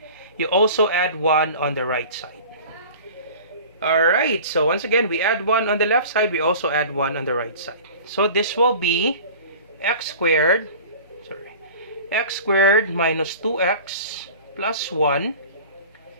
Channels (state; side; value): inverted; both; correlation -0.40